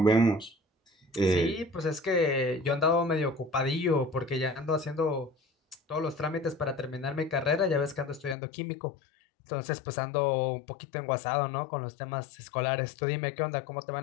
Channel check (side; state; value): right; drops out; at 8.3 s